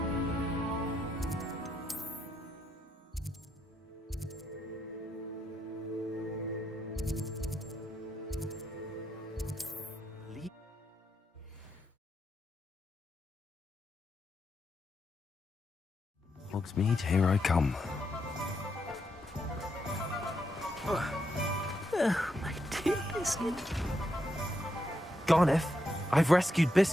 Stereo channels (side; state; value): both; normal; correlation 0.81